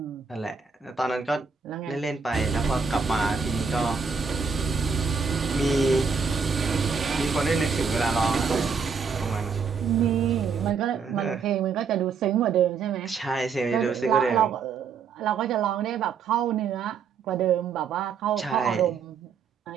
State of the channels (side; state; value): left; quieter; 5.6 dB